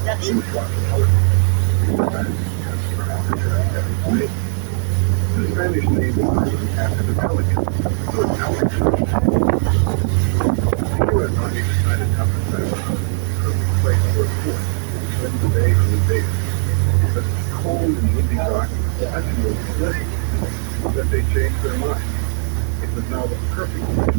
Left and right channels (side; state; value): left; silent; 62 dB below the other